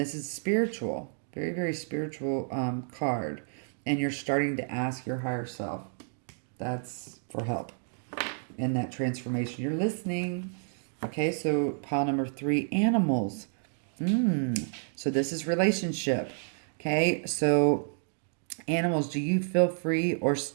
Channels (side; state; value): left; silent; 58 dB below the other